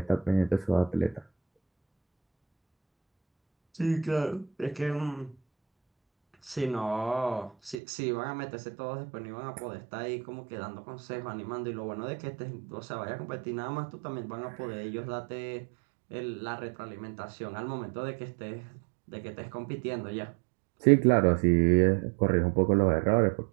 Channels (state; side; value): drops out; left; at 7.8 s